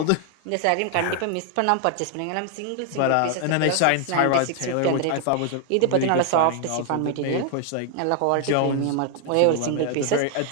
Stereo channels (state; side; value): different; both; correlation 0.00